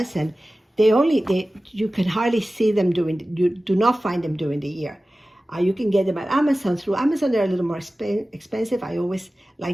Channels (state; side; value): normal; both; correlation 0.96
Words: and you can hardly see them you do not find them during the year. You can get them at Amazon. Through Amazon, they're a little more expensive. I always